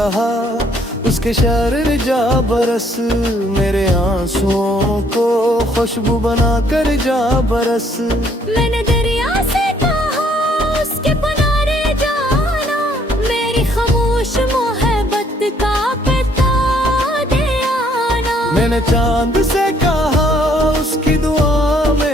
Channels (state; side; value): normal; both; correlation 0.65